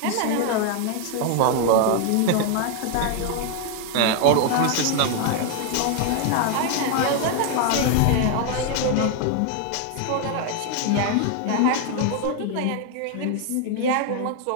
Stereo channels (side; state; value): both; different; correlation 0.00